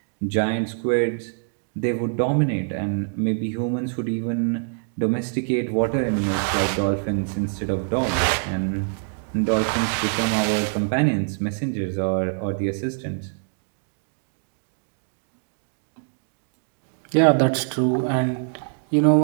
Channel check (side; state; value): left; silent; digital silence